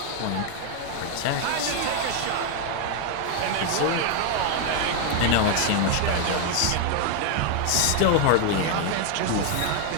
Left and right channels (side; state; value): both; different; correlation 0.01